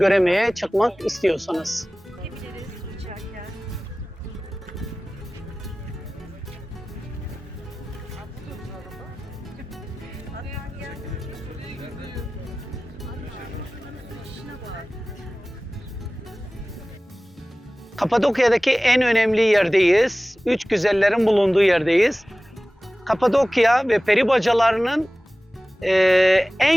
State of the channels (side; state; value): both; normal; correlation 0.98